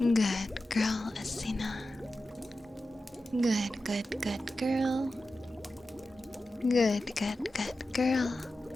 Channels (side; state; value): both; normal; correlation 0.92